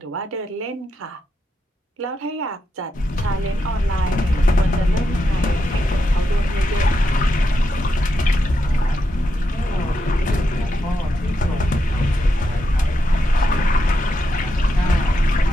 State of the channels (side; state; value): both; normal; correlation 0.84